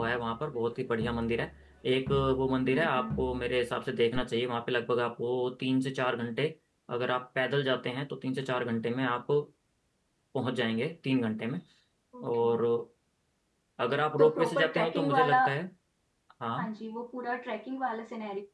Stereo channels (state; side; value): identical; both; correlation 1.00